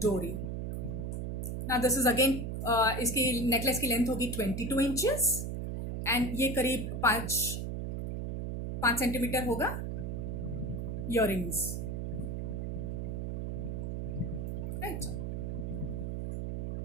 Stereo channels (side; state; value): right; noise; hum, 3 dB below the sound